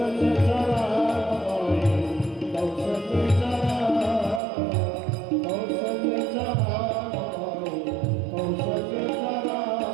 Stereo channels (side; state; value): left; drops out; at 4.4 s